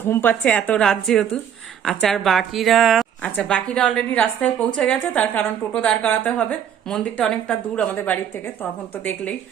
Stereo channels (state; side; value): quieter; left; 9.0 dB